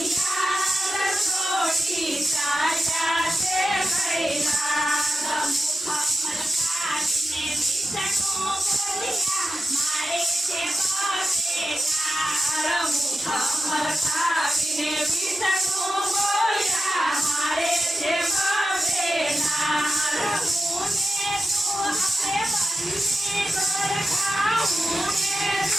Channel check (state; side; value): normal; both; correlation 0.91